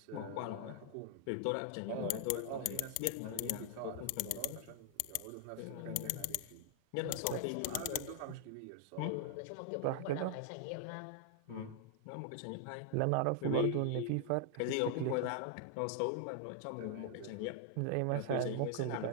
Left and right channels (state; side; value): different; both; correlation 0.00